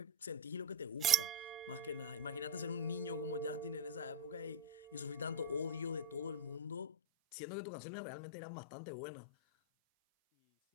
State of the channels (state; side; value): drops out; right; at 6.9 s